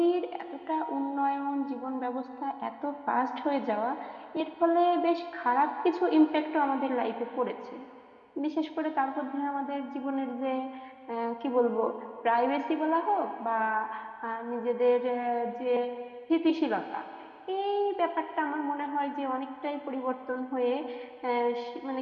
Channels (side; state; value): both; identical; correlation 1.00